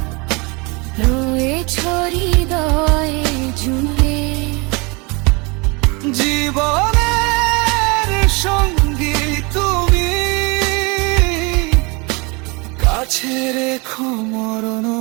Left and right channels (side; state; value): left; quieter; 28.4 dB